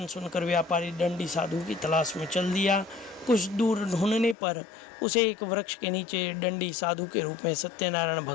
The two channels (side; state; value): right; drops out; at 4.4 s